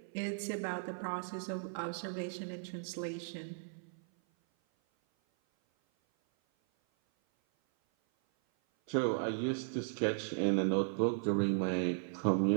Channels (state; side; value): silent; left; 54 dB below the other